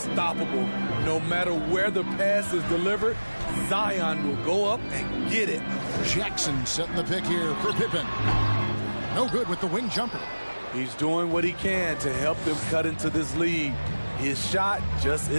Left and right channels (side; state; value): both; inverted; correlation -1.00